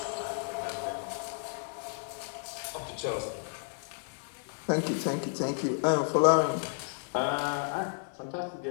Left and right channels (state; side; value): silent; right; 56 dB below the other